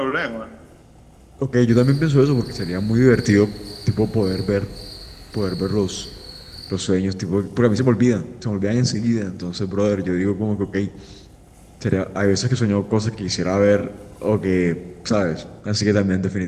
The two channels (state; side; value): identical; both; correlation 1.00